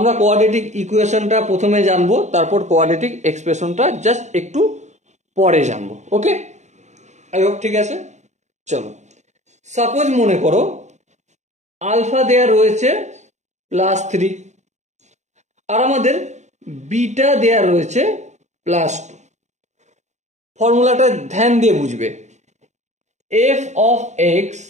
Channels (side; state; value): left; late; 0.34 ms